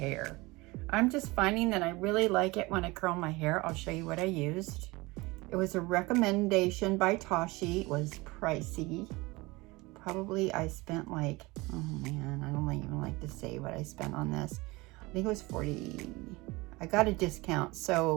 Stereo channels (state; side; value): quieter; left; 22.9 dB